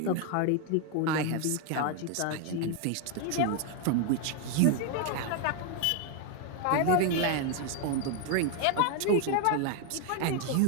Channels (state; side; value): different; both; correlation 0.01